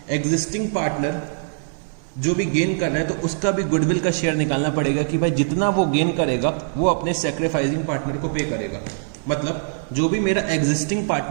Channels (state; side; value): silent; left; 64 dB below the other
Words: एग्जिस्टिंग पार्टनर जो भी गेन कर रहा है तो उसका भी गुडविल का शेयर निकालना पड़ेगा कि भाई जितना वो गेन करेगा वो अपने सैक्रिफाइसिंग पार्टनर को पे करेगा। मतलब जो भी मेरा एग्जिस्टिंग